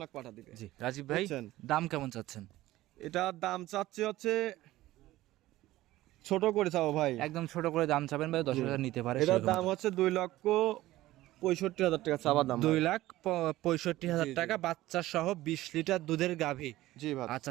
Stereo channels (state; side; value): quieter; left; 16.4 dB